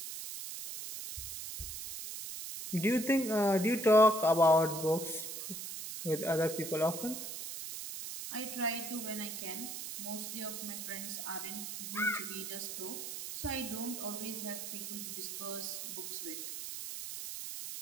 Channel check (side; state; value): right; noise; hiss, 7 dB below the sound